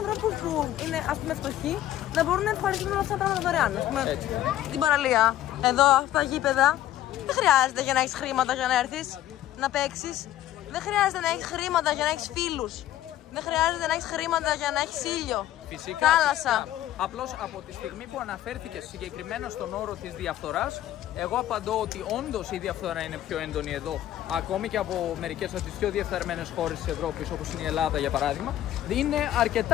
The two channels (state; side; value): quieter; right; 13.0 dB